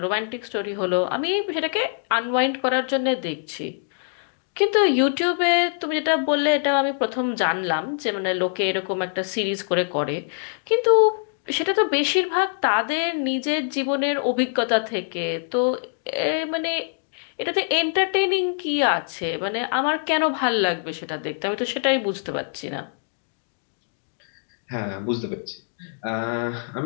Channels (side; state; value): right; silent; digital silence